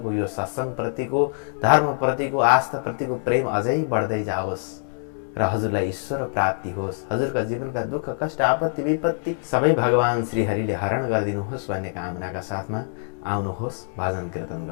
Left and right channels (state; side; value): silent; right; 62 dB below the other